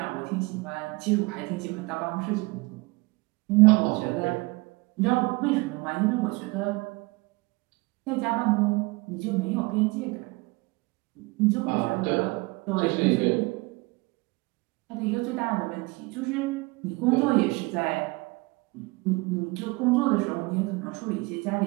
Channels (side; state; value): left; quieter; 24.9 dB